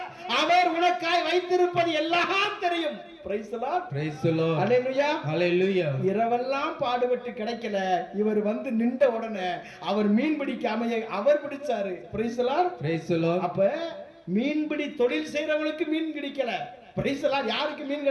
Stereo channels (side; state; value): both; identical; correlation 1.00